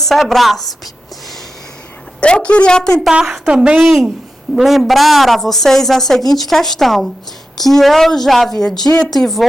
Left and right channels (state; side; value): normal; both; correlation 0.91